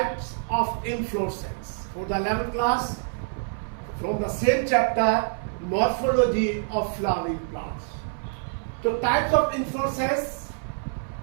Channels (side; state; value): left; silent; 57 dB below the other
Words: of inflorescence for the 11th class from the same chapter morphology of flowering plants. तो types of inflorescence